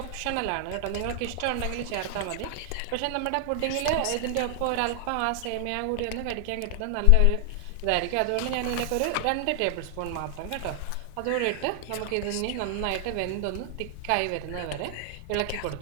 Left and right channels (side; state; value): both; different; correlation 0.00